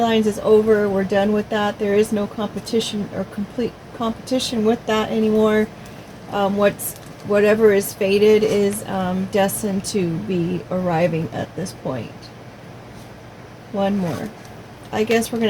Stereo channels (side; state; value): both; identical; correlation 1.00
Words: is over. We're done with that. There is no competition or complete competition with that anymore. Whatever is fated is destined to be arriving at this point. One more. I guess we're